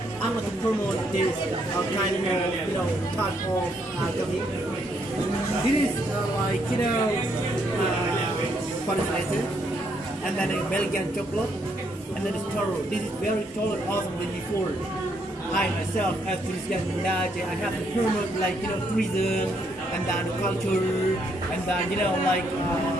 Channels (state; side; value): normal; both; correlation 0.73